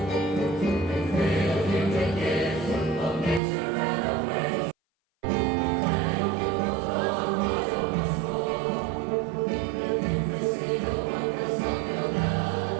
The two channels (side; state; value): left; drops out; at 3.4 s